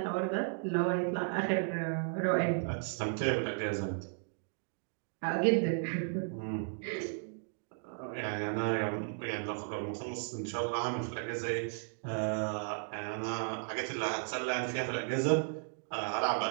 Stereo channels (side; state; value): left; silent; 55 dB below the other